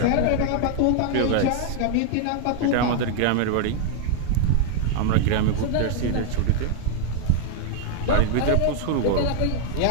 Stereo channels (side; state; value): both; different; correlation 0.00